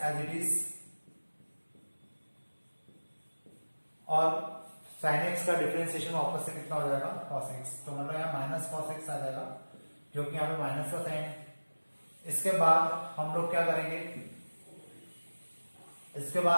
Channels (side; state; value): both; inverted; correlation -1.00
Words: as it is, और साइन एक्स का डिफरेंशिएशन वापस से कितना हो जाएगा cos x। तो मतलब यहाँ माइनस cos x आ जाएगा क्योंकि यहाँ पे माइनस का साइन है। इसके बाद हम लोग क्या करेंगे, इसके